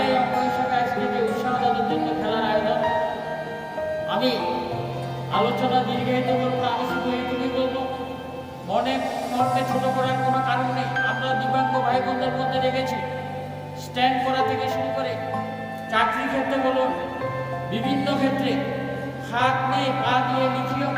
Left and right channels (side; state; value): both; identical; correlation 1.00